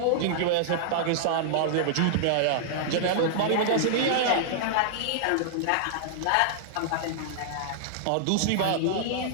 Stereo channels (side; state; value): both; different; correlation -0.01